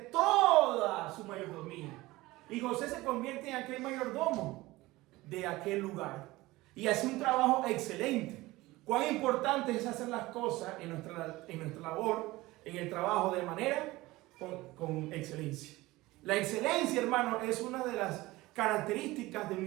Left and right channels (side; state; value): left; quieter; 19.4 dB